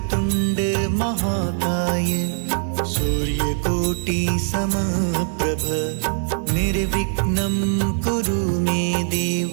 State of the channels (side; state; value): left; silent; 64 dB below the other